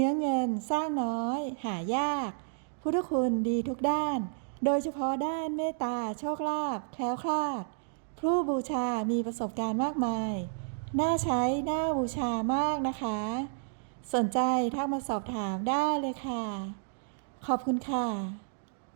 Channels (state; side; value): silent; left; digital silence